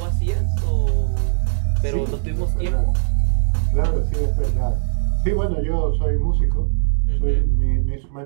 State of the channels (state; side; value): silent; left; digital silence